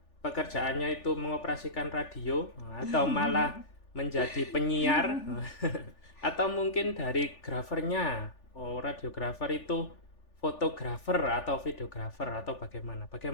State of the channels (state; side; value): late; right; 3.4 ms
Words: pekerjaannya itu mengoperasikan radio atau malah menjadi penyiar atau mungkin dari grafernya. Oh, radiografer itu fotografer atau videografer atau bagaimana?